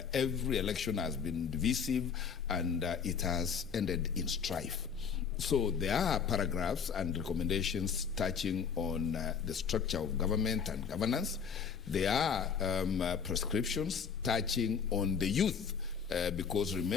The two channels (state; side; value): quieter; right; 6.8 dB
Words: every election has been divisive, and it has ended in strife. So there are paragraphs and recommendations touching on the structure of government and governance. There are prescriptions touching on the youth, because